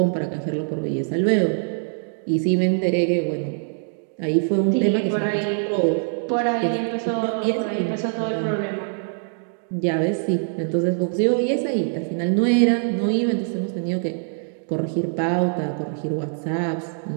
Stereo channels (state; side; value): silent; left; digital silence